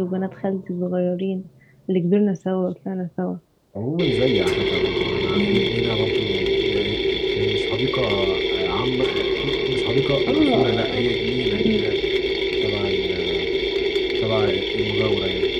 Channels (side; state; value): both; identical; correlation 1.00